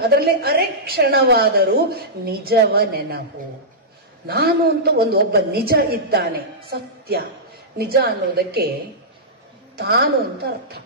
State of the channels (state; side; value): normal; both; correlation -0.14